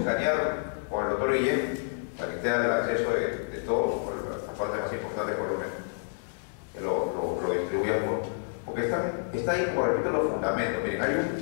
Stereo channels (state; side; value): silent; right; digital silence